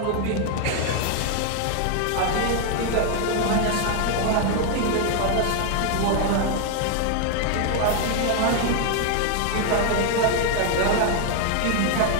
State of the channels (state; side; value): different; both; correlation 0.00